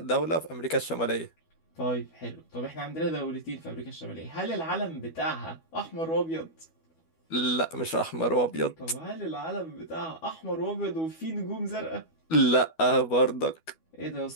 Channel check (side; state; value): right; late; 12 ms